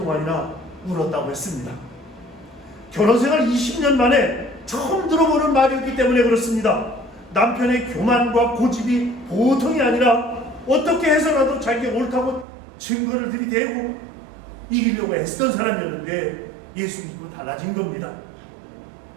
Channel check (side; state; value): left; drops out; at 12.5 s